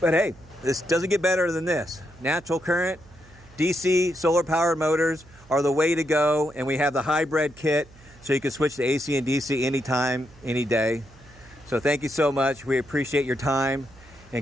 hey, this doesn't get better than this. Natural Current, DC, solar powered motors are the way to go. And we have the hybrid kit, so you can switch to AC and DC anytime, any day. So thank you so much. We appreciate your time, and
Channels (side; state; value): right; noise; hum, 24 dB below the sound